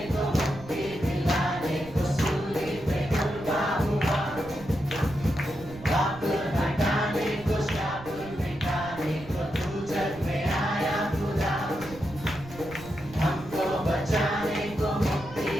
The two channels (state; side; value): noise; right; rumble, 17 dB below the sound